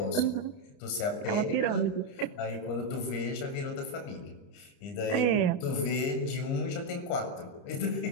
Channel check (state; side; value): late; right; 30 ms